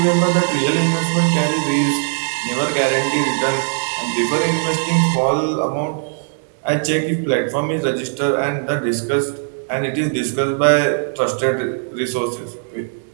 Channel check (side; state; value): left; silent; digital silence